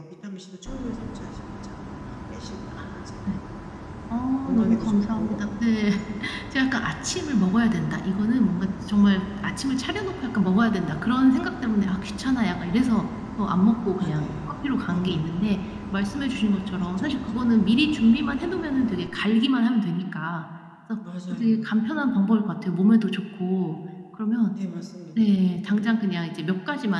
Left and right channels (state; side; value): identical; both; correlation 1.00